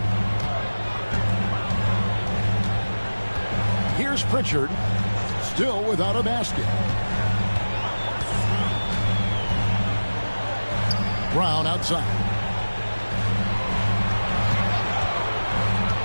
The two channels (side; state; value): both; inverted; correlation -1.00